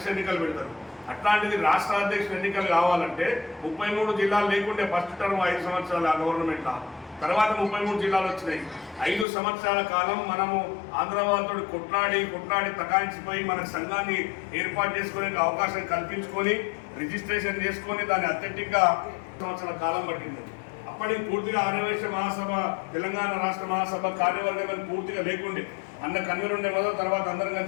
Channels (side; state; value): right; drops out; at 9.2 s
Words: ఎన్నికలు పెడతారు. అట్లాంటిది రాష్ట్ర అధ్యక్షుల ఎన్నికలు కావాలంటే 33 జిల్లాలు లేకుంటే ఫస్ట్ టర్మ్ 5 సంవత్సరాలు ఆ గవర్నమెంట్, తర్వాత 33 జిల్లాలు వచ్చినాయి. 5 సంవత్సరాల కాలం మనము ఆంధ్ర వాళ్ళతో కొట్లాడి తకాయించిపోయి మన సంఘాన్ని ఏర్పాటు చేసుకునే అవకాశం కల్పించుకొని రిజిస్ట్రేషన్ చేసుకొని దాన్ని అథెంటిక్గా సంవత్సరాల కాలం పట్టింది. అప్పటికి పూర్తిగా ఆర్యవైశ్య మహాసభ, తెలంగాణ రాష్ట్ర మహాసభ కార్యవర్గం పూర్తిగా లేకుండే. అన్న కన్వీనర్ ఉండే మొదలు, తర్వాత అందరం